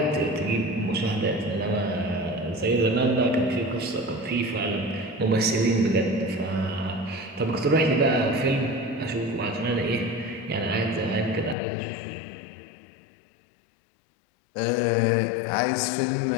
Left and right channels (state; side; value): drops out; right; at 11.6 s